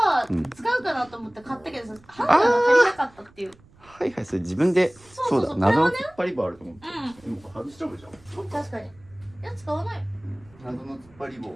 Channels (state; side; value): noise; right; rumble, 27 dB below the sound